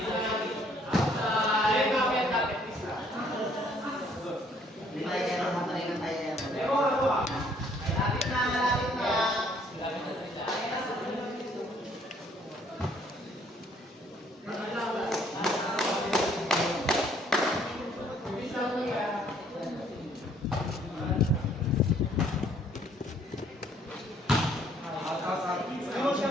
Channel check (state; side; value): normal; both; correlation 0.63